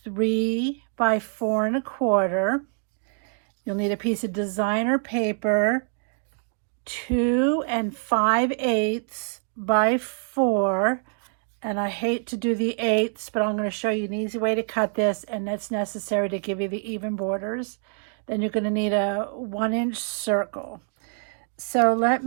by 4 1/4. You'll need a piece of designer paper, 2 5/8 by 4. And I hate to do the 8ths, but I'm going to show you an easy way to cut this, and that's necessary to give you the even borders. Then you're going to need a 1-inch circle. So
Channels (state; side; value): silent; left; 61 dB below the other